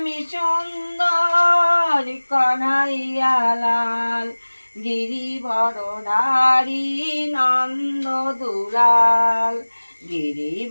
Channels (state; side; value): inverted; both; correlation -1.00